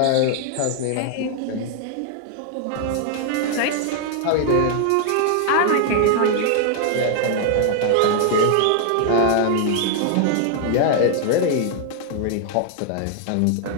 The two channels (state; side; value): different; both; correlation 0.00